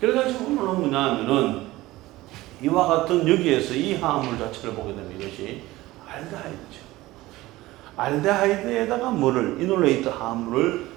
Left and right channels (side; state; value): left; quieter; 18.1 dB